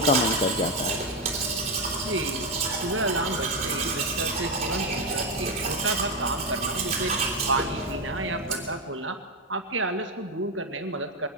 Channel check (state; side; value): normal; both; correlation 0.09